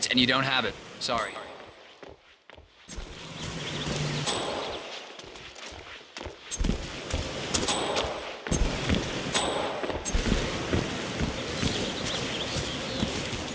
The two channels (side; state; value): both; identical; correlation 1.00